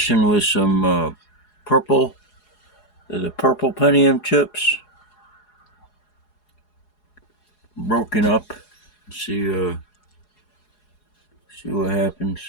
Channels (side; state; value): right; late; 4.8 ms